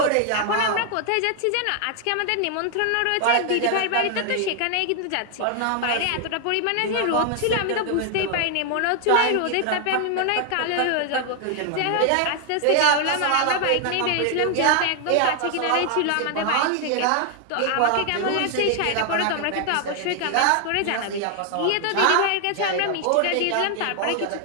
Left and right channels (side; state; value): both; different; correlation 0.00